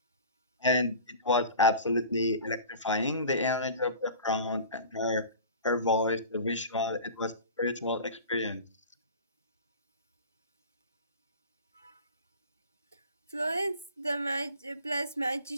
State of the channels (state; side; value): inverted; both; correlation -0.38